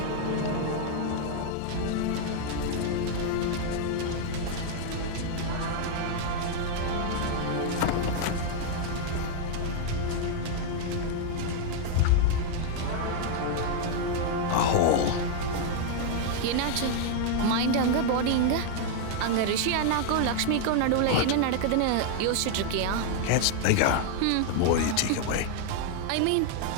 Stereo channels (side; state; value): both; different; correlation 0.00